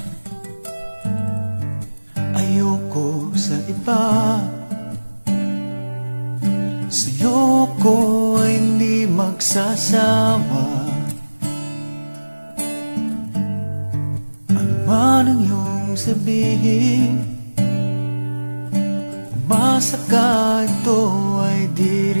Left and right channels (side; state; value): both; inverted; correlation -1.00